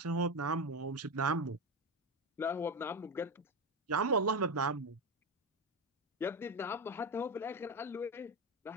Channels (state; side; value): normal; both; correlation 0.15